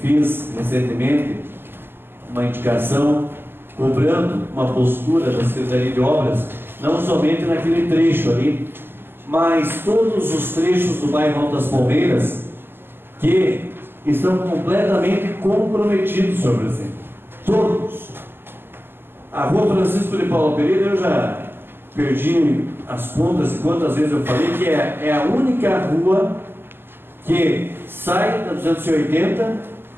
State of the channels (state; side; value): late; left; 0.10 ms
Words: fiz recentemente uma indicação cobrando uma postura da Secretaria de Obras, não somente naquele trecho ali, mas todos os trechos do bairro Alto das Palmeiras que estão completamente comprometidos, senhor presidente. Todos. A rua Francisco de Paula Pereira, eu já perdi as contas de quantas vezes eu falei que é a única rua que sai da 280,